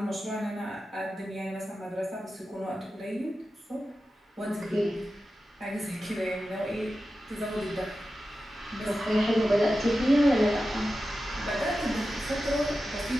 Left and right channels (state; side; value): normal; both; correlation 0.92